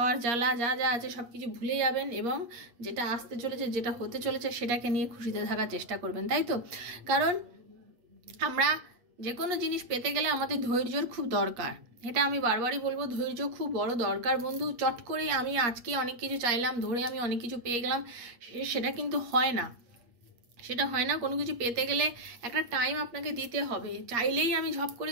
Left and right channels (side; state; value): left; late; 8.5 ms